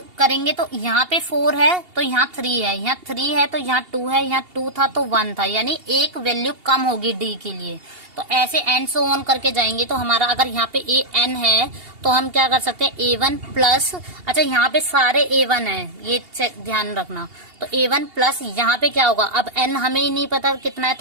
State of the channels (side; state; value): left; late; 2.8 ms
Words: करेंगे तो यहाँ पे 4 है तो यहाँ 3 है, यहाँ 3 है तो यहाँ 2 है, यहाँ 2 था तो 1 था, यानी एक वैल्यू कम होगी D के लिए। तो ऐसे एंड सो ऑन करके जाएंगे। तो हमारा अगर यहाँ पे AN है तो हम क्या कर सकते हैं, A1 प्लस, अच्छा यहाँ पे सारे A1 है, ये ध्यान रखना। तो A1 प्लस यहाँ पे क्या होगा, अब N हमें ही नहीं पता कितना है,